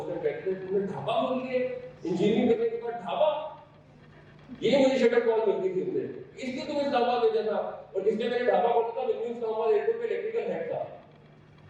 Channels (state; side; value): identical; both; correlation 1.00